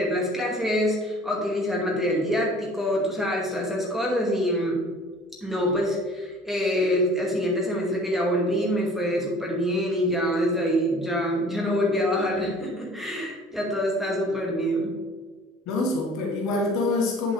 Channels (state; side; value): normal; both; correlation 0.49